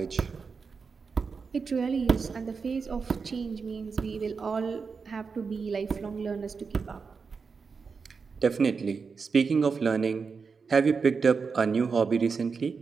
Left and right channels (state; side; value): quieter; left; 5.2 dB